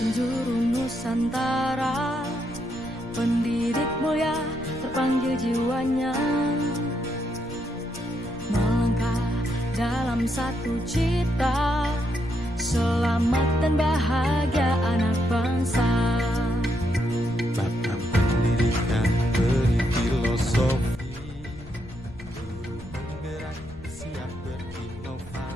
Nusantara, pendidik mulia terpanggil jiwanya, melangkah dalam satu cita, selamat dan bahagia anak bangsa.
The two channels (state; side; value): noise; left; rumble, 17 dB below the sound